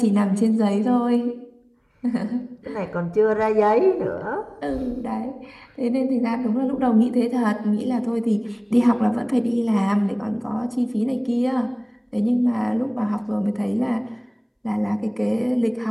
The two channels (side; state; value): both; identical; correlation 1.00